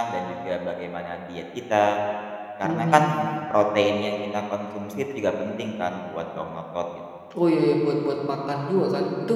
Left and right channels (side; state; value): both; identical; correlation 1.00